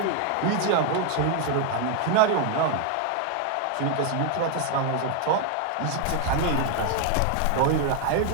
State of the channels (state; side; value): different; both; correlation 0.00